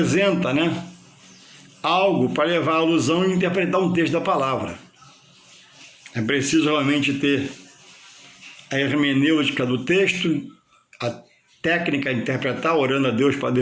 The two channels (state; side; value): identical; both; correlation 1.00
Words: algo para levar a alusão e interpretar um texto da palavra. É preciso realmente ter a hermenêutica do texto, a técnica de interpretar, orando a Deus para